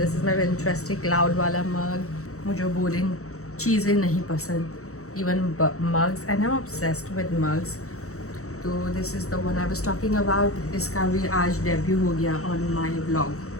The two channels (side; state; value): right; late; 0.64 ms